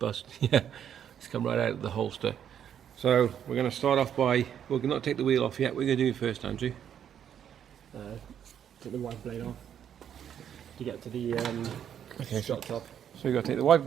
Yeah, it's come right out of the holster. So we're going to start off by, we're not take the wheel off yet. We're going to do it first, Andrew. Take the wiper blade off to get to the shot top. So you've got to take the wiper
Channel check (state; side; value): quieter; left; 9.2 dB